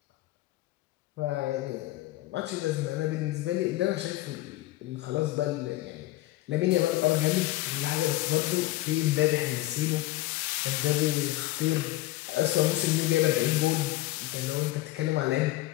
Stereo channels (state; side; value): quieter; right; 17.2 dB